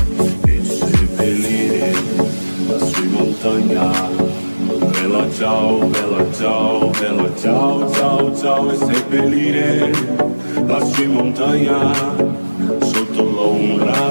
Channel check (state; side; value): inverted; both; correlation -1.00